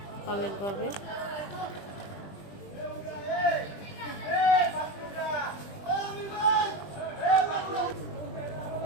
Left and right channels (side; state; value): right; late; 20 ms